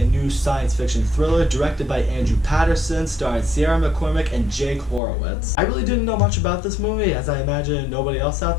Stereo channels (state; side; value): drops out; right; at 5.0 s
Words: new science fiction thriller directed by Andrew Patterson, starring Sierra McCormick and Jake Horowitz. I really didn't know much about this movie, as I imagine nobody else out